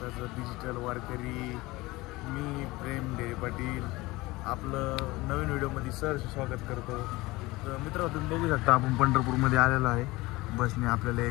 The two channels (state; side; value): quieter; right; 20.9 dB